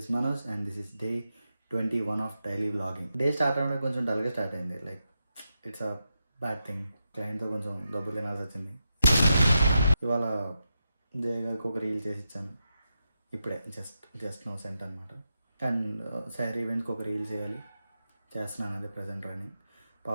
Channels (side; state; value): both; inverted; correlation -0.87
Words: Manoj and this is day 21 of daily vlogging. Day start avడం కొంచెం డల్గా start అయింది. Like it's a bad thing. క్లయింట్తో కొంచెం డబ్బులు తినాల్సి వచ్చింది. ఇవాళ జయ గారికి ఒక రీల్ చేసి ఇచ్చాను. ఇప్పుడే జస్ట్ నో సెంట్ అనమాట. అండ్ శారీ ఈవెంట్కి ఒక రీల్ చేయాలి, చేస్తున్నాను. అదే ప్రజెంట్ రన్నింగ్.